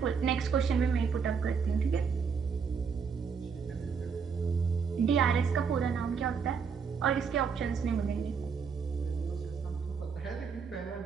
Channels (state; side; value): quieter; left; 6.0 dB